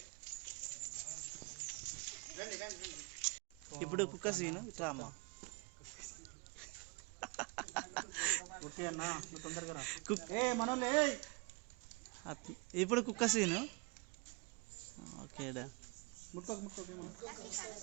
ఇప్పుడు కుక్క సీను ఇట్లా అమ్మ ఇప్పుడు కుక్క సీను ఓకేడా.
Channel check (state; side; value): quieter; left; 28.3 dB